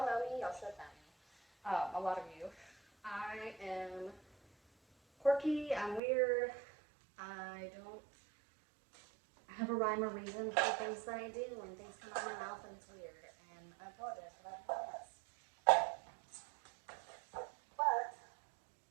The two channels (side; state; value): left; drops out; at 6.0 s